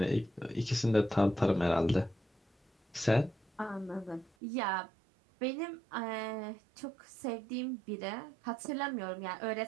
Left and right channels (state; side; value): drops out; left; at 4.3 s